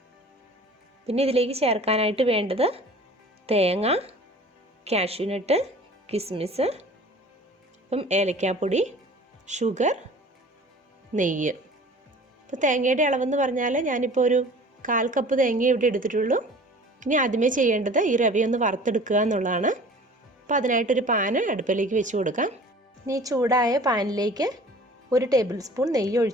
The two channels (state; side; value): normal; both; correlation 0.45